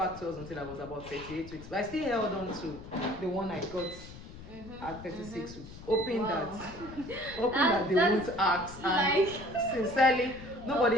to us until I was about 38 weeks. But I still held on to the one I got at 36 weeks, hoping that they won't ask. And sincerely,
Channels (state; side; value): noise; left; rumble, 15 dB below the sound